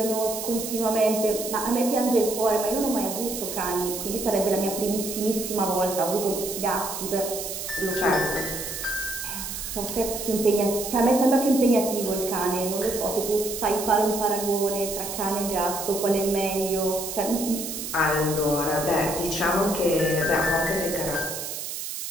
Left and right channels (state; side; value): noise; right; hiss, 6 dB below the sound